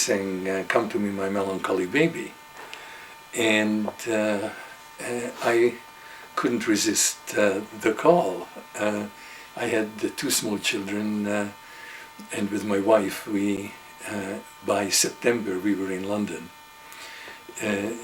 "Come to me, my melancholy baby." And I couldn't resist the call. I had two small children, and with my wife, by September, we were in London.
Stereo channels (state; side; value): identical; both; correlation 1.00